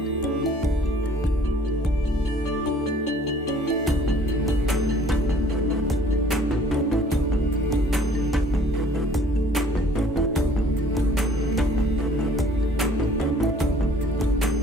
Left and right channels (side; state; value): both; normal; correlation 0.55